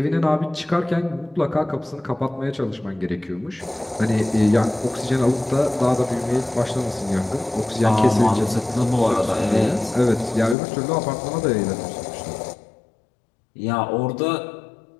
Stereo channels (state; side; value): drops out; right; at 10.6 s